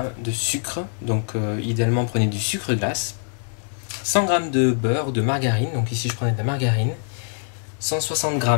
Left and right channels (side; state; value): right; silent; digital silence